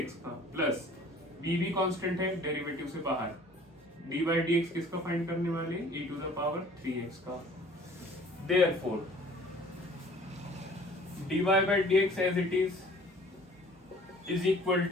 का, प्लस b भी कांस्टेंट है डेरिवेटिव से बाहर, डी बाई डी एक्स किसका फाइंड करने वाले, e to the power 3x का। Therefore, dy by dx as it is equal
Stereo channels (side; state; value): both; normal; correlation 0.52